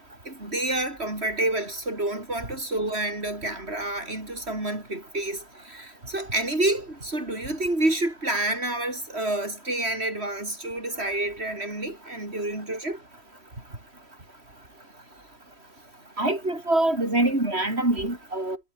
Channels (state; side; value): late; left; 3.1 ms